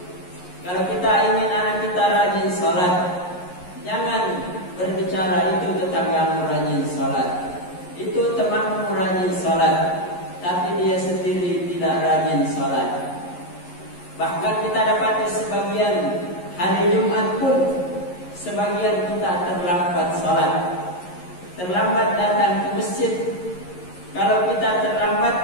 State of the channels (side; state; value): right; late; 11 ms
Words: Kalau kita ingin anak kita rajin sholat, jangan bicara itu tetanggamu rajin sholat, itu temanmu rajin sholat, tapi dia sendiri tidak rajin sholat. Bahkan kita dapati sebagian hari Jumat pun sebagian kita terlambat sholat, terlambat datang ke masjid. Kalau kita terlambat,